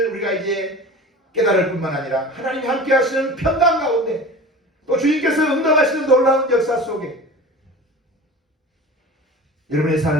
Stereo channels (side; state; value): both; normal; correlation 0.37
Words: 우리가 이제 깨달을 뿐만 아니라 하나님이 함께 하시는 평강 가운데 또 주님께서 응답하시는 놀라운 역사 속에 여러분의